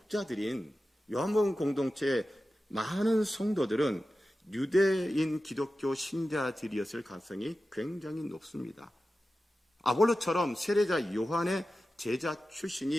요한복음 공동체의 많은 성도들은 유대인 기독교 신자들이었을 가능성이 굉장히 높습니다. 아볼로처럼 세례자 요한의 제자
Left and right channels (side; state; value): both; normal; correlation 0.94